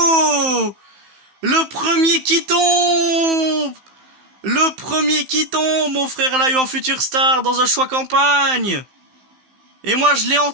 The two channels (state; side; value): late; left; 15 ms